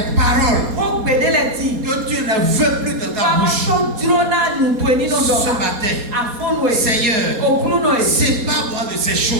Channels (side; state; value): left; late; 4.2 ms